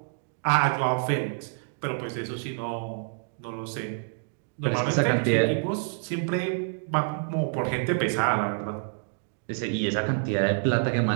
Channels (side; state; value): left; silent; digital silence